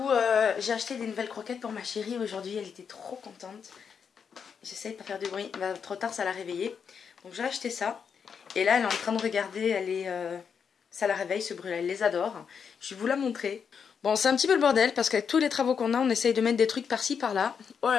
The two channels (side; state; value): right; quieter; 6.7 dB